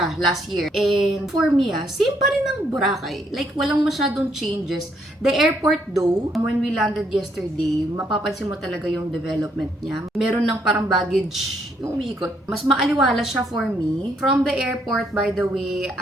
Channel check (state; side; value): normal; both; correlation 0.71